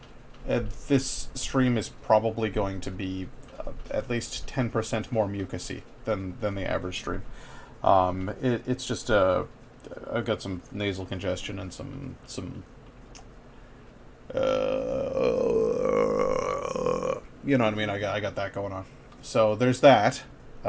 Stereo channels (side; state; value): both; identical; correlation 1.00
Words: this stream is probably going to be at least 10% more mucusy than the average stream. It's just I've got some nasal congestion and some you know what I mean. I got that going on. So there's that,